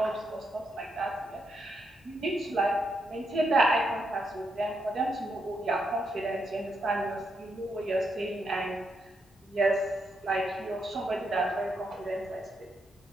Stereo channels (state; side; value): normal; both; correlation 0.81